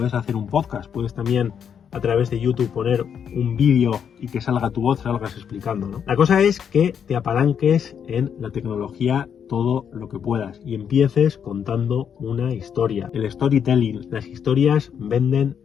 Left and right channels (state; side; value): quieter; right; 7.8 dB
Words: hacer un podcast, puedes también a través de YouTube poner un vídeo y que salga tu voz, salgas explicando, ¿no? La cosa es que te apalanques en la tecnología todo lo que puedas y empieces contando una historia. El storytelling, las historias venden